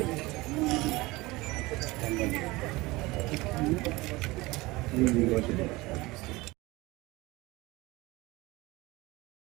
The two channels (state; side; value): quieter; left; 21.4 dB